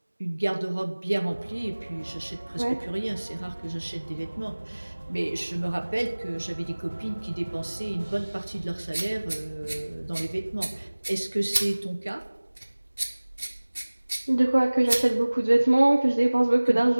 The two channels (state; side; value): inverted; both; correlation -1.00